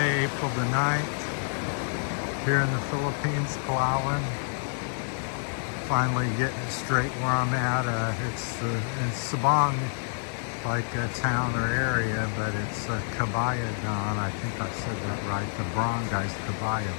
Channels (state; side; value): silent; right; digital silence